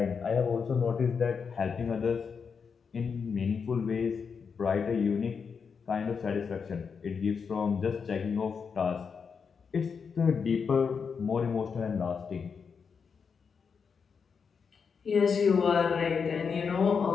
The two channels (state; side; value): quieter; right; 5.9 dB